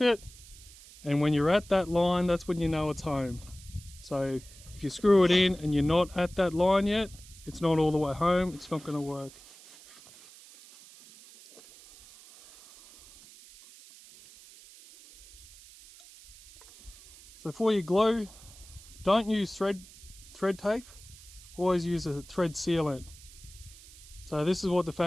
and when you're at that line, that's when you know it's home. So if you screw it in and you're not at that line yet, it's not all the way home, it's not going to work. So for your glue, don't use thread tape, always use a thread sealant. So this is what the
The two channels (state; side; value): noise; right; hiss, 21 dB below the sound